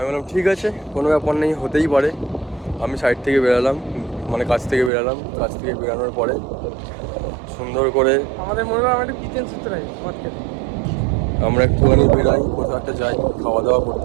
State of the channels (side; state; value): left; drops out; at 4.9 s